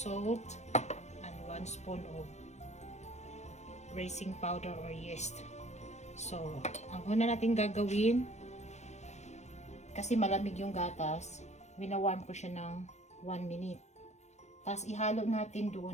and 1 spoon of raising powder or yeast. So, ang una natin gagawin, kasi malamig yung gatas, winawarm ko siya ng 1 minute. Tapos, ihalo natin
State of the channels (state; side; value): late; right; 0.33 ms